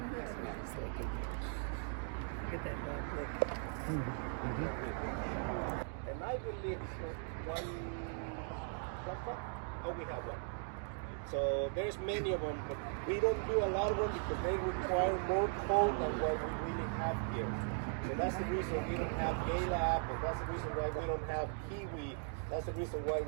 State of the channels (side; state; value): left; silent; 52 dB below the other